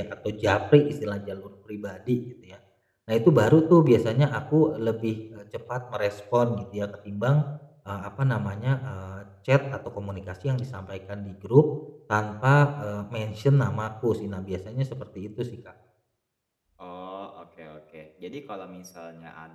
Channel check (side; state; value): both; identical; correlation 1.00